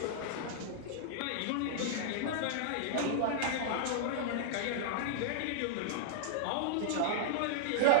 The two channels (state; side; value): different; both; correlation -0.02